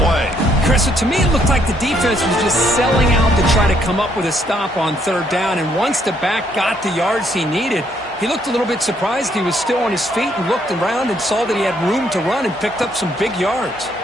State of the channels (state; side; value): normal; both; correlation 0.70